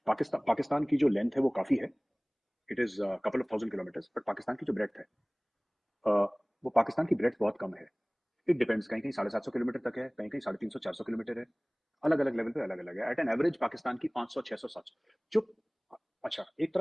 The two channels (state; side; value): identical; both; correlation 1.00